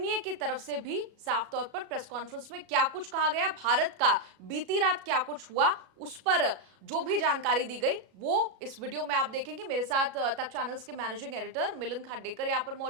की तरफ से भी साफ तौर पर प्रेस कॉन्फ्रेंस में क्या कुछ कहा गया, भारत का बीती रात क्या कुछ हुआ, उस पर जो भी जानकारी दी गई वो इस वीडियो में आप देखेंगे। मेरे साथ तक चैनल्स के मैनेजिंग एडिटर मिलिंद खांडेकर यहाँ पर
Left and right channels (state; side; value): late; left; 37 ms